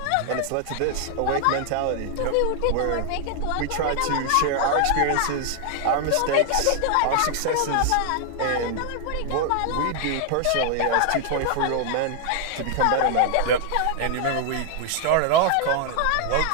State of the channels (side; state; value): both; different; correlation 0.00